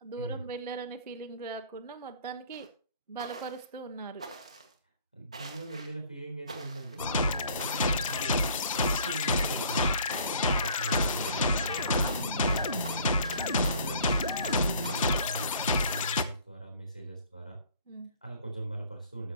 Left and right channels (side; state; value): both; inverted; correlation -0.53